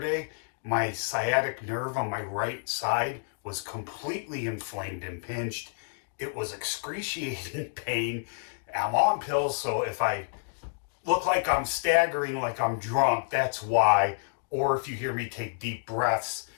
my sciatic nerve on my right side was completely inflamed and pinched. It was excruciating pain. I'm on pills, so if I look like I'm staggering, like I'm drunk, that's why. Or if you hear me take deep breaths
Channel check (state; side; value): silent; right; digital silence